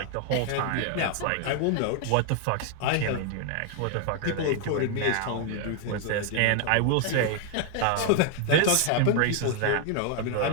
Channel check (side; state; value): both; different; correlation 0.00